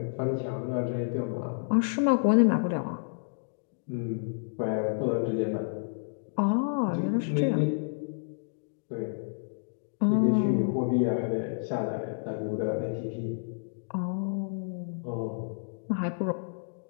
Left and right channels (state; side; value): silent; right; digital silence